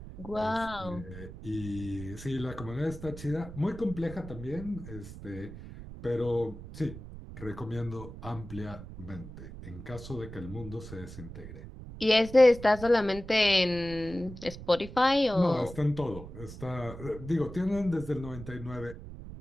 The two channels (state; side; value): noise; right; rumble, 13 dB below the sound